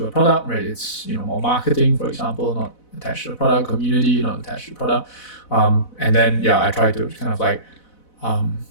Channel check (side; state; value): right; late; 4.0 ms